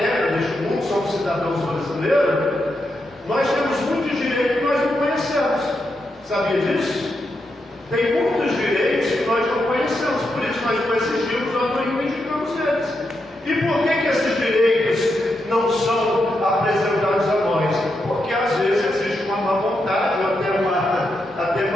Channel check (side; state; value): both; normal; correlation 0.84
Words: neste mundo, somos cidadãos brasileiros, nós temos muitos direitos que nós não conhecemos. Sabia disso? Tem muitos direitos que nós não conhecemos, por isso nós não exigimos ou não reivindicamos eles. E por que esses direitos não são apresentados a nós? Porque às vezes existe uma má vontade ou até